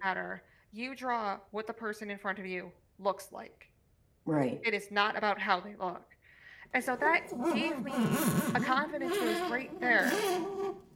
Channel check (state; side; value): identical; both; correlation 1.00